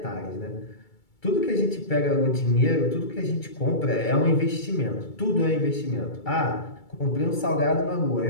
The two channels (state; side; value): late; right; 2.3 ms